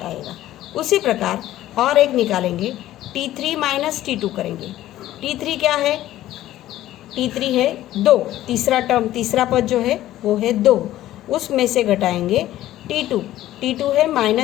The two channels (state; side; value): quieter; right; 14.1 dB